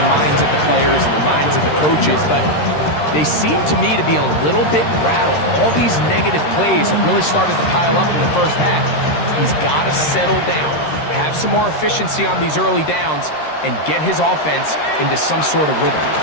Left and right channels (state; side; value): late; right; 13 ms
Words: minds of the players and the minds of the coaches, but they seem to me to be a little bit rattled. All these negative plays have really started to pile up in the first half. He's got to settle down, have some more efficiency on these early downs, and get his offense into some sort of rhythm.